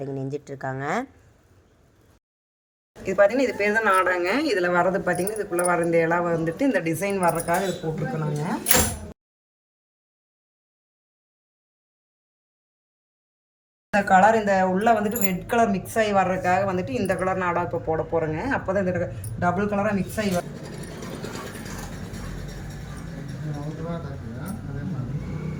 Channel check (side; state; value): both; identical; correlation 1.00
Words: நெஞ்சிட்ருக்காங்க. இது பார்த்தீங்கன்னா இது பேர் தான் நாடாங்க. இதில் வர்றது பார்த்தீங்கன்னா இதுக்குள்ளே வர இந்த இலை வந்துட்டு இந்த டிசைன் வர்றதுக்காக இது போட்டிருக்கோங்க. இந்த கலர் இந்த உள்ளே வந்துட்டு ரெட் கலர் மிக்ஸ் ஆகி வர்றதுக்காக வந்துட்டு இந்த கலர் நாடா இப்போ போட போகிறேங்க. அப்போ தான் இந்த டபுள் கலராக மிக்ஸ் ஆகி வரும்.